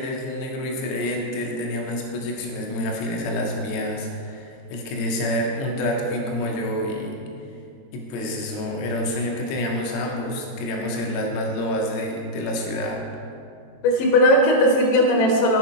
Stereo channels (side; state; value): right; late; 22 ms